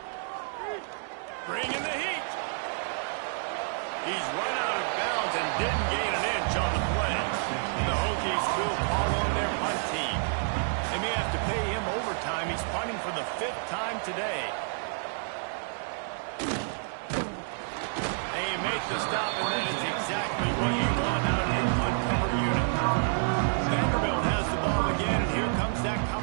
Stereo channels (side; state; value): left; silent; digital silence